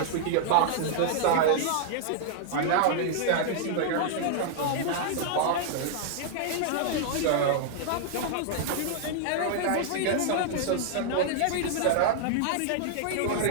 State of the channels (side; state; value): both; different; correlation -0.01